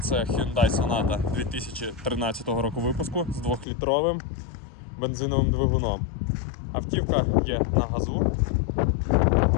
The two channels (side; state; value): right; drops out; at 3.7 s